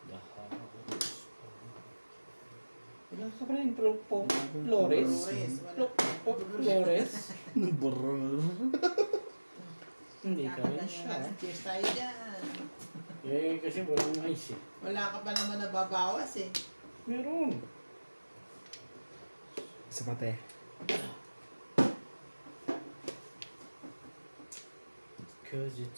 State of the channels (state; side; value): inverted; both; correlation -1.00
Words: the house. Wala ka pa rin Flores. Flores. Brrrr. Hindi ka rin siya. Cheers tayo dyan. Eh, kasi walang ice eh. Wala ka pa naman nababawas eh. Meron. Isa pa te. Cause